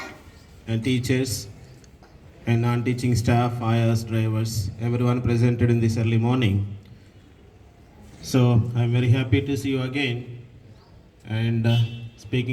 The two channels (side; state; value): both; identical; correlation 1.00